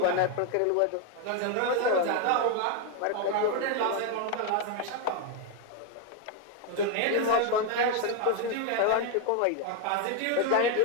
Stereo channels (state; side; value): different; both; correlation 0.01